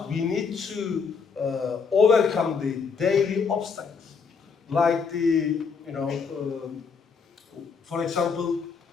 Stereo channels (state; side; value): quieter; right; 5.5 dB